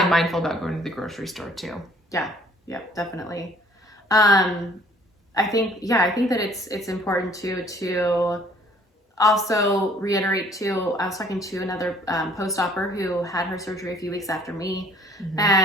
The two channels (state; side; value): normal; both; correlation 0.57